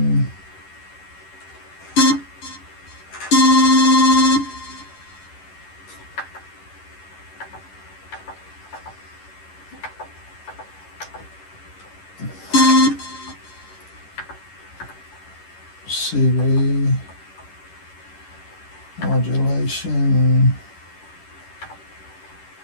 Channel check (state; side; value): late; right; 11 ms